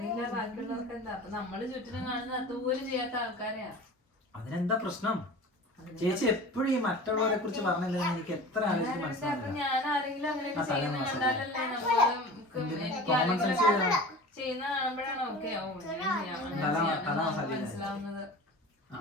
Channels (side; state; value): both; normal; correlation 0.37